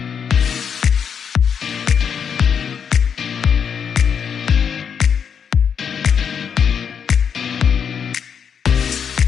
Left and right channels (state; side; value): quieter; right; 7.3 dB